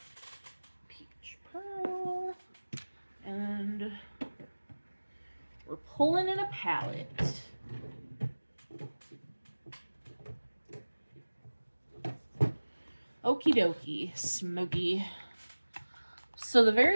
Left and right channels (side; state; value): both; inverted; correlation -1.00